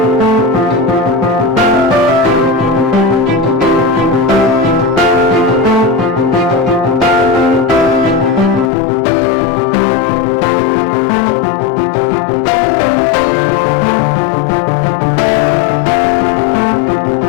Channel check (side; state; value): right; drops out; at 8.7 s